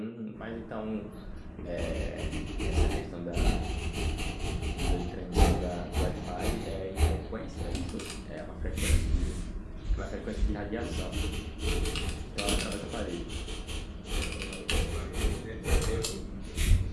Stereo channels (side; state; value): both; identical; correlation 1.00